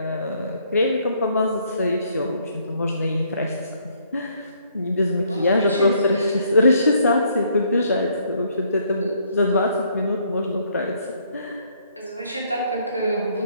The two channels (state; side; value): inverted; both; correlation -0.67